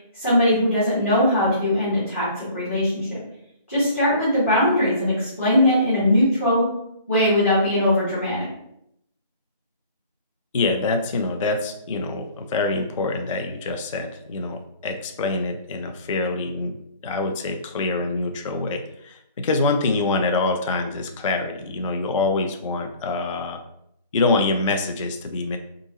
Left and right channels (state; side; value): inverted; both; correlation -0.49